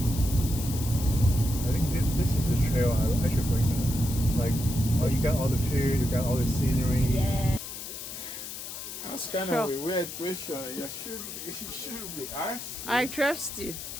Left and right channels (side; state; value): left; noise; hiss, 9 dB below the sound